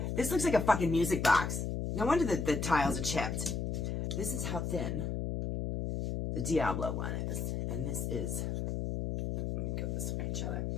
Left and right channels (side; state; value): left; noise; hum, 2 dB below the sound